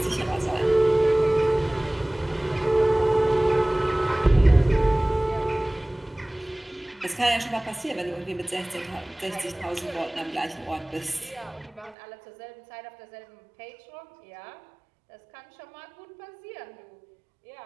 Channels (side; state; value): left; drops out; at 12.0 s